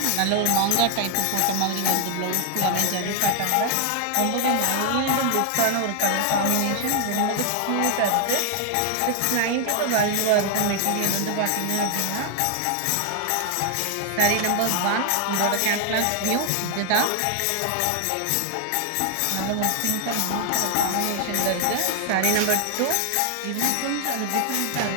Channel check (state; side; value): different; both; correlation 0.00